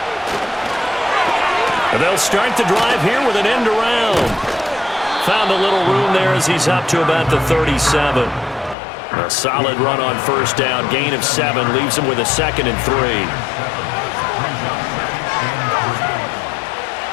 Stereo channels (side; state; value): right; drops out; at 8.8 s